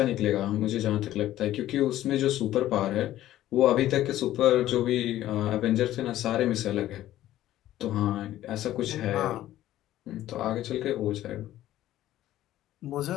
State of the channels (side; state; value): right; quieter; 13.8 dB